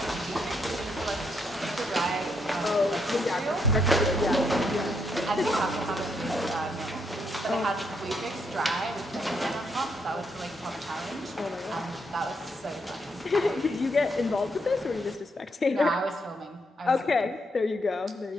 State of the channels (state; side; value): normal; both; correlation 0.76